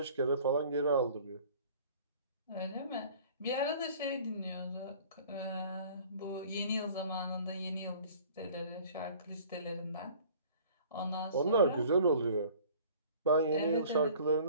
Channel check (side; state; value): both; inverted; correlation -0.49